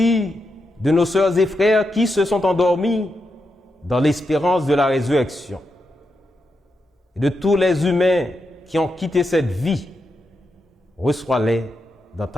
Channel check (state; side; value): normal; both; correlation 0.85